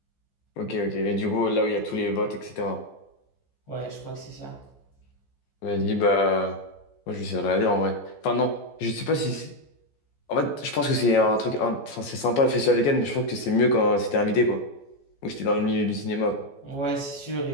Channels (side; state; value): right; late; 14 ms